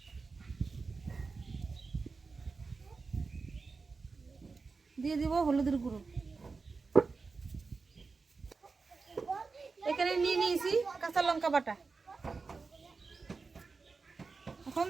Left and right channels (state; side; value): quieter; left; 4.4 dB